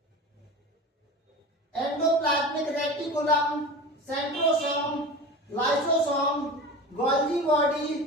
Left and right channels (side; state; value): both; normal; correlation 0.31